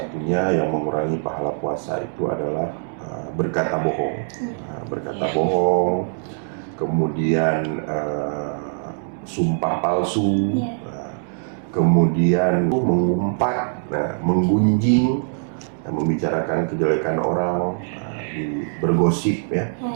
yang mengurangi pahala puasa itu adalah berkata bohong. Nah, berkata bohong, kemudian sumpah palsu, kemudian mengumpat, menggunjing, membicarakan kejelekan orang, bergosip ya.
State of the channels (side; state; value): left; silent; digital silence